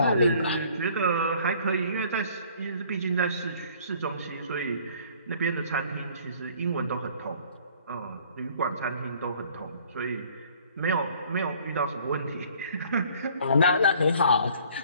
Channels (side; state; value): both; inverted; correlation -0.55